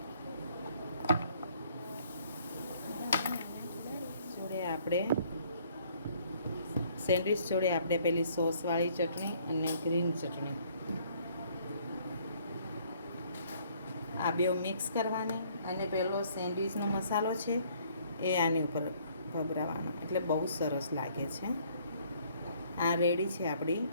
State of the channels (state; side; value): inverted; both; correlation -0.61